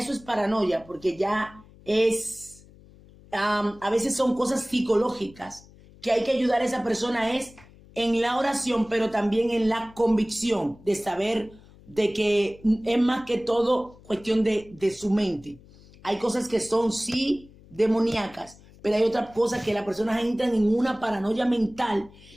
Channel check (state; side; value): noise; left; hum, 24 dB below the sound